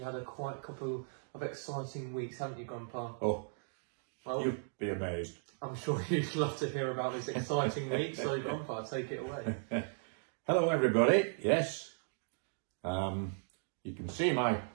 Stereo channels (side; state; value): left; silent; digital silence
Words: had quite a couple of exciting weeks, haven't you, Grandpa? Oh, well, you'd be amazed. I'm sure you'd love to hear about this exciting week, so Grandpa, take it away. Hello, everybody. Yes, you can see my